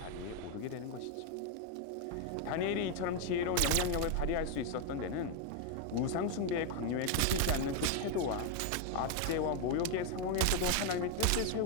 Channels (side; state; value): both; different; correlation 0.01